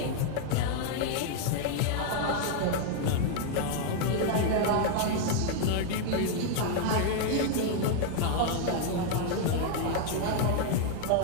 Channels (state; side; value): different; both; correlation 0.00